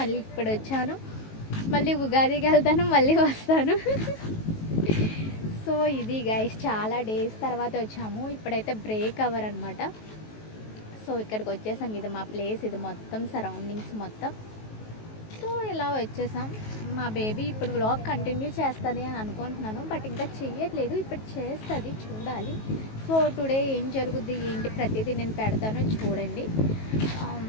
ఇప్పుడు వచ్చాను. మళ్ళీ ఉగాదికి వెళ్తాను, మళ్ళీ వస్తాను. సో ఇది గైస్, చాలా డేస్ తర్వాత వచ్చాము. ఇప్పుడైతే బ్రేక్ అవర్ అనమాట. సో ఇక్కడికి వచ్చేసాం. ఇది మా ప్లేస్, ఇది మొత్తం సరౌండింగ్స్ మొత్తం. సో ఇలా వచ్చేసాం. మా బేబీ ఇప్పుడు వ్లాగ్ కంటిన్యూ చేస్తుంది అని అనుకుంటున్నాను, బట్ ఇంకా చెయ్యట్లేదు. ఇప్పుడు చేస్తుంది, చూడాలి. సో టుడే ఏం జరుగుద్ది ఏంటి ప్రతిదీ నేను పెడతాను, చూడండి.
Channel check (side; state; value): right; late; 19 ms